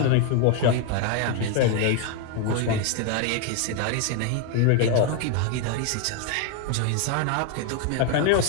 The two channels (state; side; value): different; both; correlation 0.01